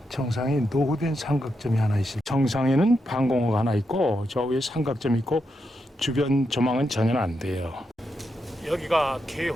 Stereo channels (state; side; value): normal; both; correlation 0.84